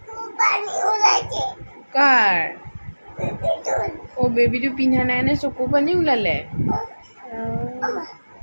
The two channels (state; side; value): inverted; both; correlation -1.00